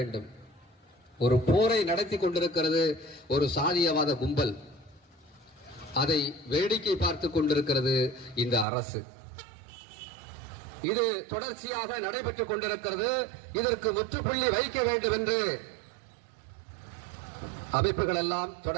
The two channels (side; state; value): left; drops out; at 8.7 s